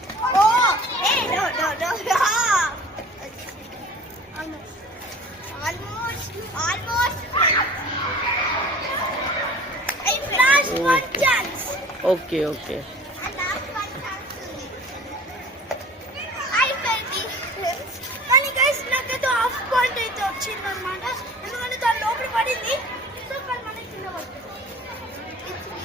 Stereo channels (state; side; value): normal; both; correlation 0.44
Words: no. Almost. Last one chance. Okay. And last one chance. I felt it. కానీ guys నాకైతే హాఫ్ పాయింట్ అయితే వచ్చింది అన్నమాట. ఎందుకంటే దాని లోపల పడింది. సో కానీ మనకి కింద పడుతుంది.